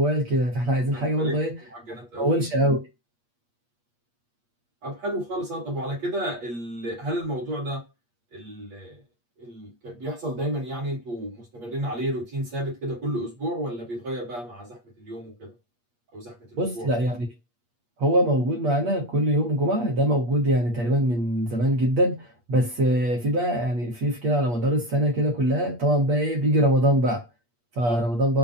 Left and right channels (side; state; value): left; late; 8.4 ms